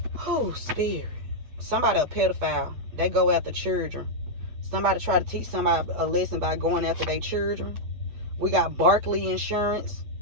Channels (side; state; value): left; late; 8.6 ms